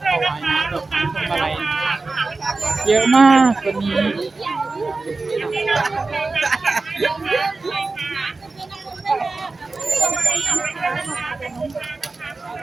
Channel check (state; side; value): quieter; left; 3.6 dB